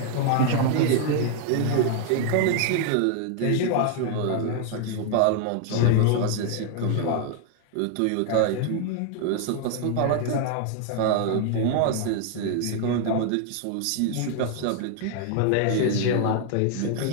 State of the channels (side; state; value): both; different; correlation 0.00